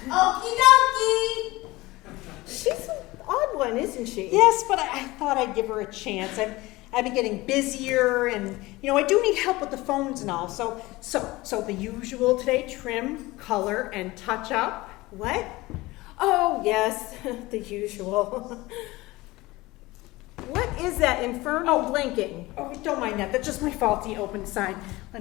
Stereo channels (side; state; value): right; quieter; 20.3 dB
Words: Okie dokie. She's an odd one, isn't she? Yes, but I thought I'd give her a chance. I've been getting busier, and I do need help with the phones and all. So the usual today: trim, color, and touch up. What? Oh, yes, the usual. What is that infernal blinking? Oh, don't mind that. That's just my faulty open sign. Let